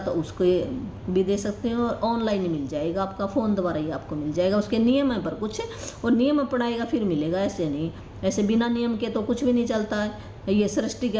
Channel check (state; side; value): identical; both; correlation 1.00